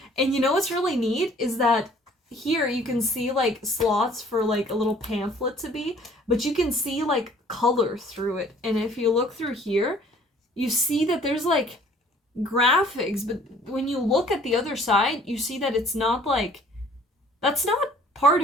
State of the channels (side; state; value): both; normal; correlation 0.55